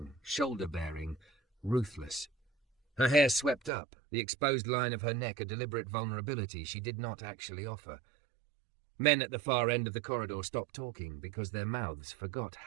shoulder-bearing, ruthless. Her hair swept up, the exposed line of her neck a deliberate vulnerability she did not actually offer. Men at the far end of the corridor stopped talking because their mouths forgot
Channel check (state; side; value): drops out; left; at 3.7 s